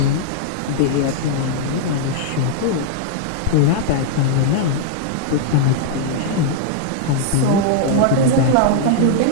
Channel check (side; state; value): both; different; correlation -0.01